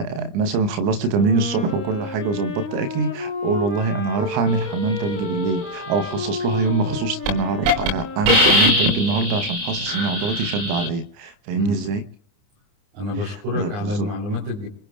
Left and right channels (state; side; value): late; left; 29 ms